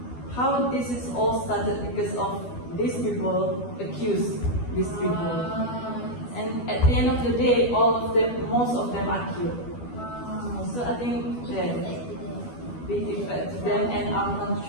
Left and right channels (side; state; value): right; late; 12 ms